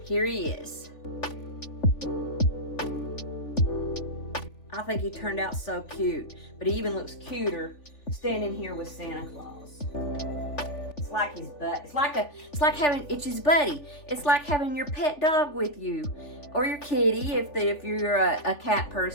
here he is. I think he turned out so cute, but he even looks cuter standing here with Santa Claus. It's like his butt. It's like having Itchy's buddy. It's like having your pet dog with you, or your kitty if you're a cat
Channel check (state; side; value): late; right; 3.5 ms